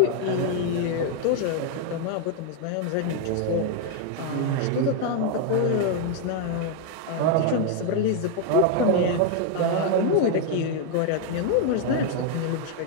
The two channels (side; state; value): both; different; correlation 0.00